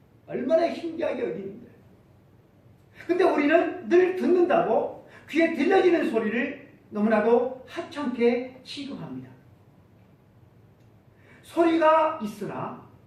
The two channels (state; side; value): identical; both; correlation 1.00